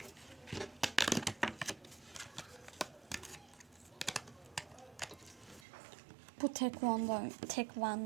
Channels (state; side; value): drops out; left; at 5.7 s